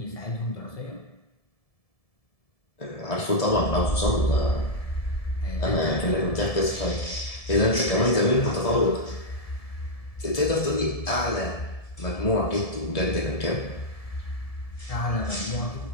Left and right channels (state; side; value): late; right; 1.7 ms